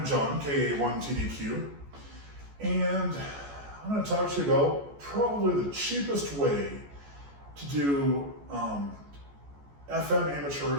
John, KA1TDQ, and I'm going to talk to you about probably the cheapest way to do FM amateur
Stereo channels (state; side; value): late; left; 14 ms